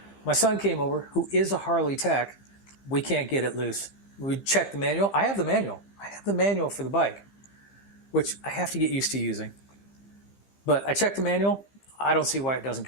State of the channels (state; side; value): late; right; 15 ms